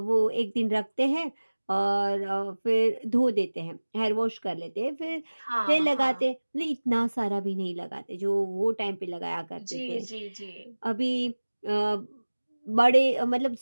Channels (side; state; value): both; inverted; correlation -1.00